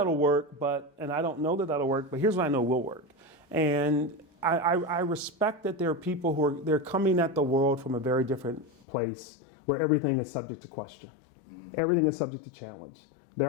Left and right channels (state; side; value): drops out; right; at 8.7 s